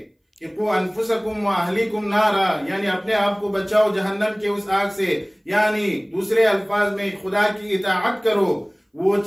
کہ قُوْ أَنفُسَكُمْ وَأَهْلِيكُمْ نَارًا، یعنی اپنے آپ کو بچاؤ جہنم کے اس آگ سے، یعنی دوسرے الفاظ میں خدا کی اطاعت کرو، وہ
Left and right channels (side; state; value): both; identical; correlation 1.00